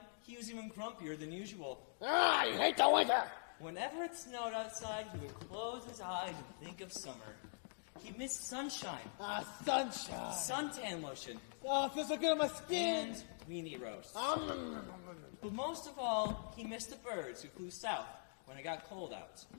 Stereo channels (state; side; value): silent; right; digital silence